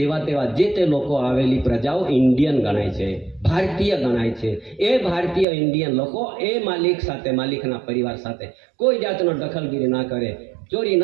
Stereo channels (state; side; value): drops out; left; at 5.5 s